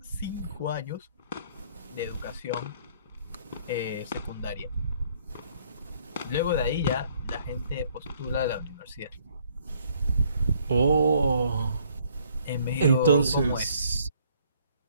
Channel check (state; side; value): inverted; both; correlation -0.63